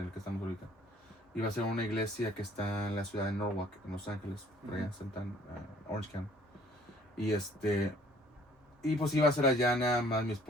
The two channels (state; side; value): normal; both; correlation 0.57